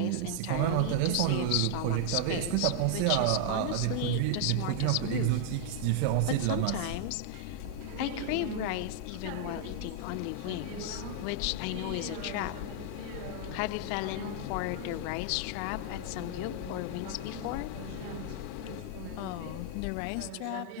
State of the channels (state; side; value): different; both; correlation 0.00